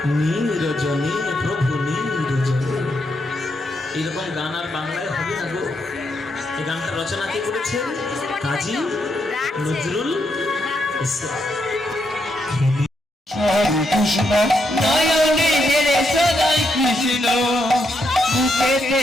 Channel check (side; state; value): both; normal; correlation 0.79